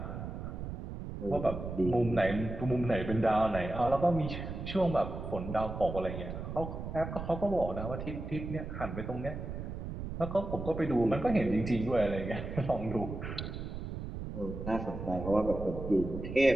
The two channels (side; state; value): right; noise; rumble, 7 dB below the sound